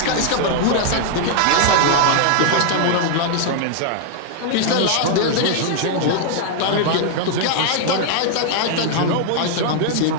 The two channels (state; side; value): different; both; correlation 0.00